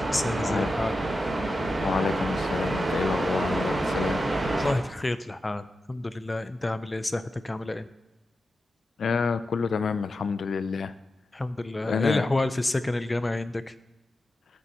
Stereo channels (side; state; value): both; normal; correlation 0.91